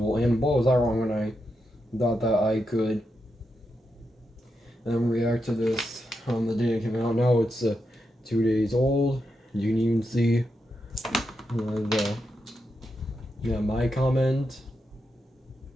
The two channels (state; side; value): normal; both; correlation 0.85